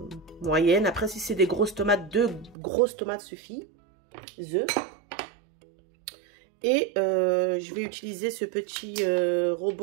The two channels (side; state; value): left; drops out; at 2.6 s